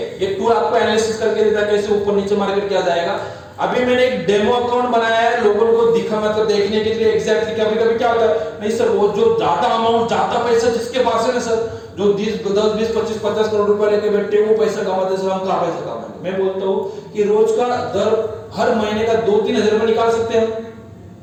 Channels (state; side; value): identical; both; correlation 1.00